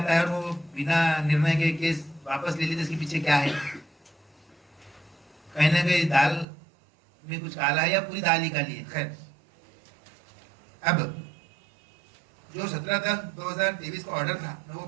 है और वो बिना निर्णय के केस वापस ले लेते, इसके पीछे क्या है? कहीं ना कहीं दाल में कुछ काला है या पूरी दाल ही काली है। खैर, अब जो 17/10/2023 का ऑर्डर था मैं वो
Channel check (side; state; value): left; drops out; at 6.5 s